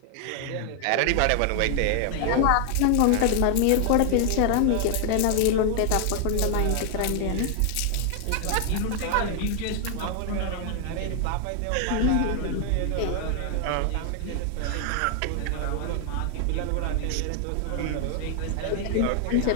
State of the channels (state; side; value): different; both; correlation 0.00